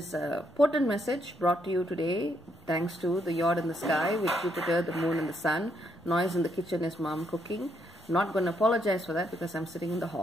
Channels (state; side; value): normal; both; correlation 0.75